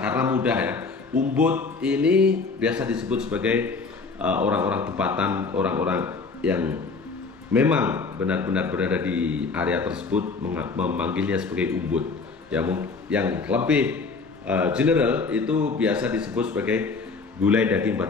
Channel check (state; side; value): quieter; right; 4.4 dB